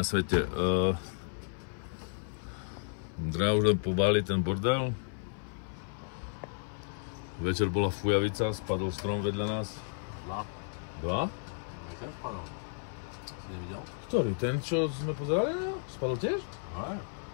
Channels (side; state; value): right; silent; 56 dB below the other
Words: svete. Dra už len pobáli ten bordel. Večer bola fujavica, spadol strom vedľa nás. Dva? Ten spadol. Si nevidel? Ktorý? Ten, čo sme pozerali na? Spadol tiež? Aj.